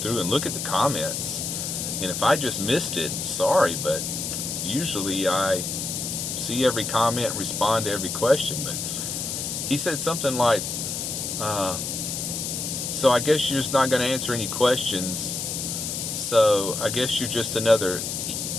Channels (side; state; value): left; noise; hiss, 3 dB below the sound